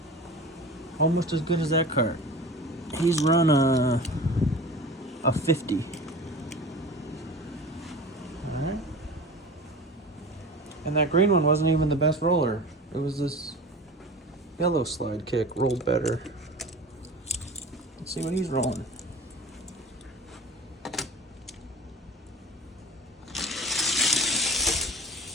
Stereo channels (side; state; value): both; normal; correlation 0.36